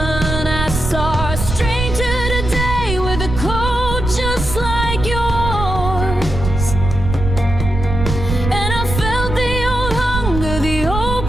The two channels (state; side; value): noise; right; rumble, 4 dB below the sound